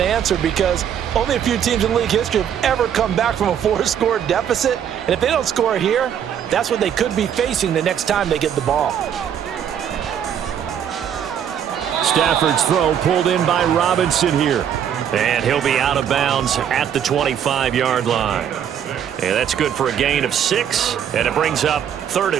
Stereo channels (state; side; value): quieter; left; 8.9 dB